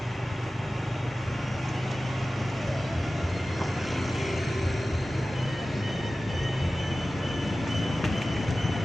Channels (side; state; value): both; normal; correlation 0.96